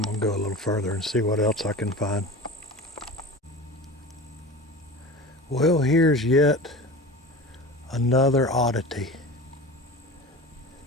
going to go a little further and see what else I can find. Well, here's yet another oddity.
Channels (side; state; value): both; normal; correlation 0.33